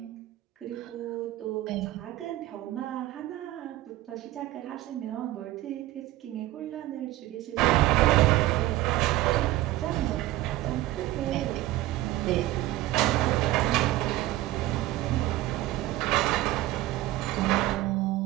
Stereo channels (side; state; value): left; quieter; 16.1 dB